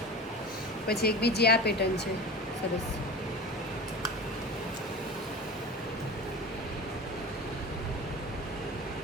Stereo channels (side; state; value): both; normal; correlation 0.32